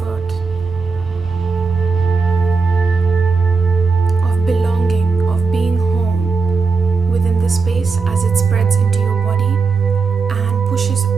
of belonging, of being home within the space as it spreads into your body and pushes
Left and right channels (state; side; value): quieter; left; 4.6 dB